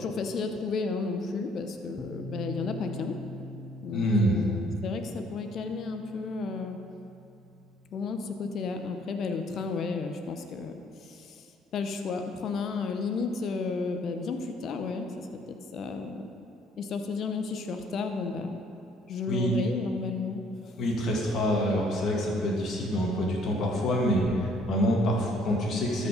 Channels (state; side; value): normal; both; correlation 0.62